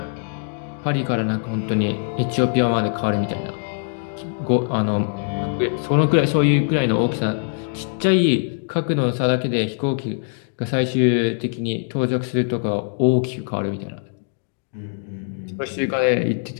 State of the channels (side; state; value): right; silent; digital silence